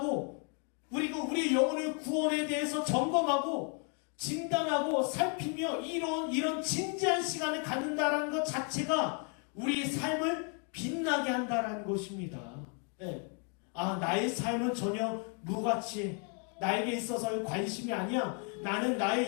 그리고 우리 영혼의 구원에 대해서 점검하고 진단하고 살피며 이런 진지한 시간을 갖는다는 것 자체가 우리의 삶을 빛나게 한다는 것입니다. 네. 아, 나의 삶은 전혀 무가치해. 나에게 있어서의 관심이 아니야. 나는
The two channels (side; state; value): right; quieter; 39.4 dB